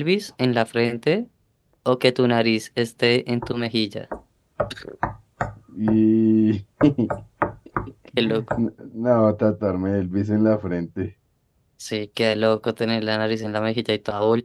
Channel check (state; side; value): identical; both; correlation 1.00